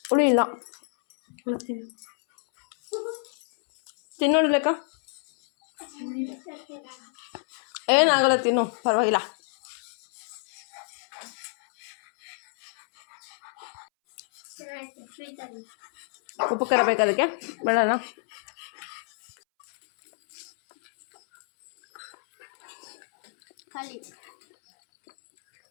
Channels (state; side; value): silent; right; 59 dB below the other